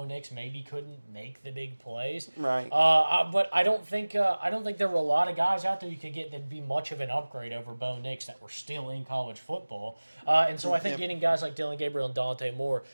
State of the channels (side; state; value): both; inverted; correlation -1.00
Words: Nix maybe couldn't make the big plays. Right. But I don't think there were a lot of guys out there you could get that'd be much of an upgrade over Bo Nix that were still in college football. And so I think Yep. getting guys like Dylan Gabriel and Dante Moore